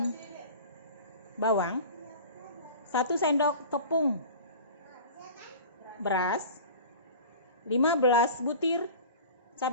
bawang, 1 sendok tepung beras, 15 butir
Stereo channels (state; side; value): inverted; both; correlation -0.38